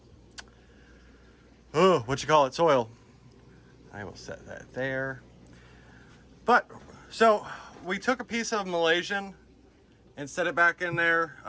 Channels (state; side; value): identical; both; correlation 1.00